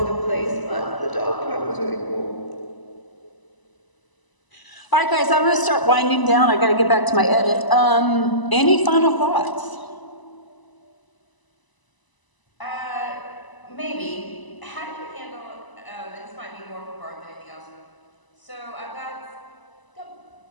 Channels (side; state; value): right; late; 1.0 ms